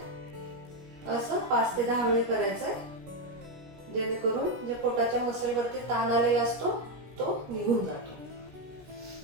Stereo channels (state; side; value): late; left; 17 ms